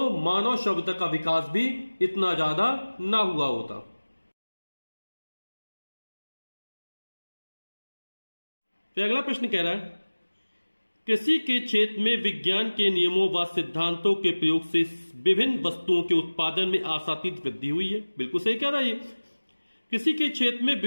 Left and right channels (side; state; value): both; inverted; correlation -1.00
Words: मानव सभ्यता का विकास भी इतना ज्यादा ना हुआ होता। फिर अगला प्रश्न कह रहा है, कृषि के क्षेत्र में विज्ञान के नियमों व सिद्धांतों के प्रयोग से विभिन्न वस्तुओं के उत्पादन में आशातीत वृद्धि हुई है। बिल्कुल सही कह रहा है ये। कृषि के क्षेत्र में